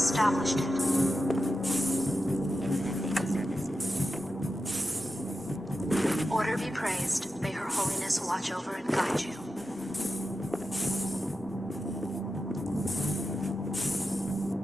it. Order be praised. May Her Holiness watch over and guide you.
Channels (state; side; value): normal; both; correlation 0.90